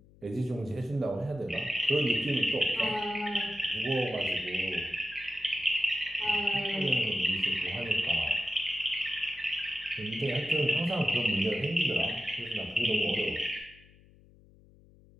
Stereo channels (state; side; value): noise; left; hum, 26 dB below the sound